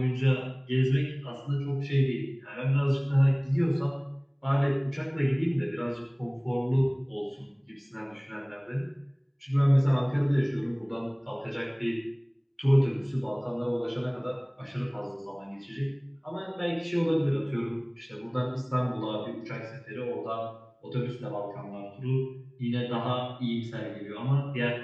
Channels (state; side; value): identical; both; correlation 1.00